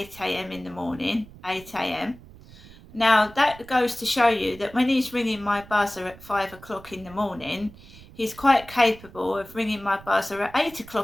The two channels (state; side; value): noise; right; rumble, 20 dB below the sound